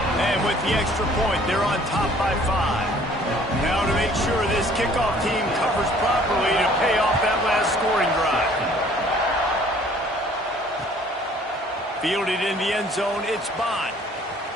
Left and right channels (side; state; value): both; normal; correlation 0.56